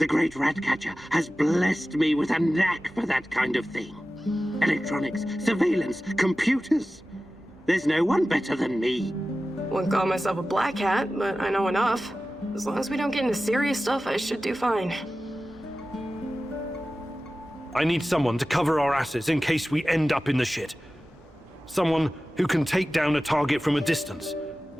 great Ratcatcher has blessed me with a knack for that kind of thing. Electronics, surveillance, computers. There's no one better than me. Wouldn't call myself a black hat, but I know enough. As long as we don't get into serious stuff, I should do fine. I need someone to cover our asses in case we end up in the shit. Someone who can take down a target from a distance,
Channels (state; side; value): normal; both; correlation 0.95